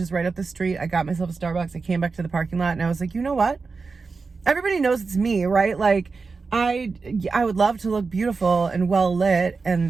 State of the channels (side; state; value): left; quieter; 4.5 dB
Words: right up the street. I got myself a Starbucks. I came back to the parking lot, and I was like, you know what? Everybody knows it's me, right? Like I would love to look beautiful and well lit